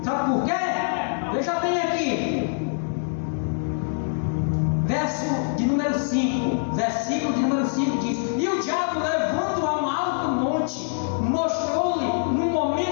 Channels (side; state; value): right; silent; digital silence